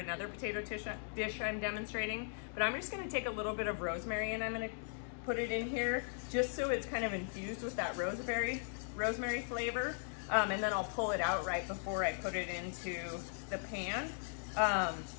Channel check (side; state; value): right; silent; digital silence